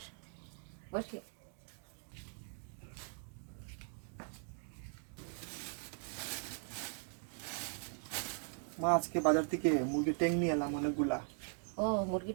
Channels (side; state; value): left; silent; 51 dB below the other